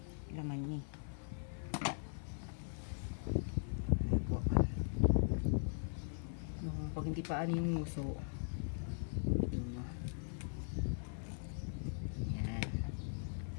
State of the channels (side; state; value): right; silent; 51 dB below the other